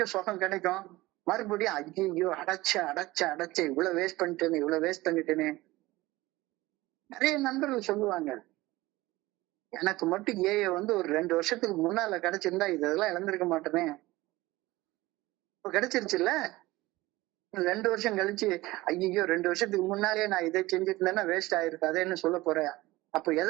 சுகம் கிடைக்கும். மறுபடியும் ஐயோ அடைச்ச இவ்வளவு வேஸ்ட் பண்ணிட்டேனே. நிறைய நண்பர்கள் சொல்லுவாங்க, எனக்கு மட்டும் ஒரு 2 வருஷத்துக்கு முன்னால கிடைச்சிருந்தா இதெல்லாம் இழந்திருக்க மாட்டேனே. இப்ப கிடைச்சிருச்சுல்ல. 2 வருஷம் கழிச்சு ஐயோ 2 வருஷத்துக்கு முன்னாலே நான் இதை செஞ்சுட்டு இருந்தேன்னா வேஸ்ட் ஆயிருக்கு அதேன்னு சொல்ல போறேன். அப்ப எதை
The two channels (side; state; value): left; quieter; 19.3 dB